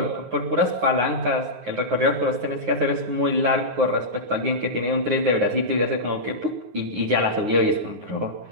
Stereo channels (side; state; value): left; late; 9.5 ms